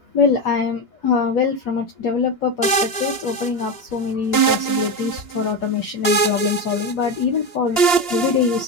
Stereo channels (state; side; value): late; right; 2.9 ms